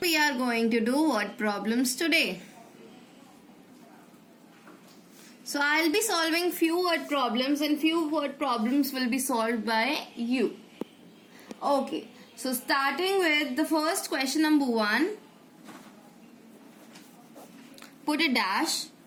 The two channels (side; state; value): both; identical; correlation 1.00